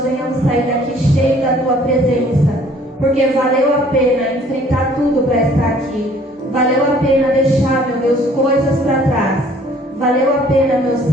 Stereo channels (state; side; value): normal; both; correlation 0.57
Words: venhamos sair daqui cheio da Tua presença. Porque valeu a pena enfrentar tudo para estar aqui. Valeu a pena deixar, meu Deus, coisas para trás. Valeu a pena, meu